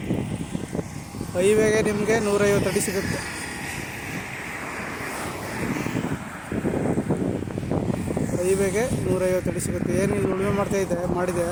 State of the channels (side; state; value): both; identical; correlation 1.00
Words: ಹೈವೇಗೆ ನಿಮಗೆ 150 ಅಡಿ ಸಿಗುತ್ತೆ. ಹೈವೇಗೆ 150 ಅಡಿ ಸಿಗುತ್ತೆ. ಏನು ಇಲ್ಲಿ ಉಳುಮೆ ಮಾಡಿದೆ